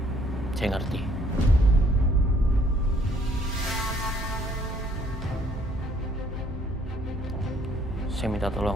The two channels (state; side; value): normal; both; correlation 0.63